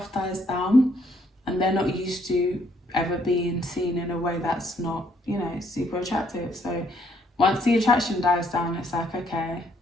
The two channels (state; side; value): normal; both; correlation 0.69